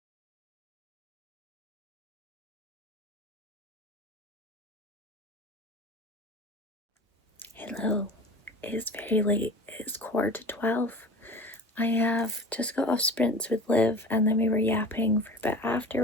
Hello, it is very late. It is 11:15. I have just got off sprints with Liv, and then we were yapping for a bit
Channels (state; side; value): normal; both; correlation 0.37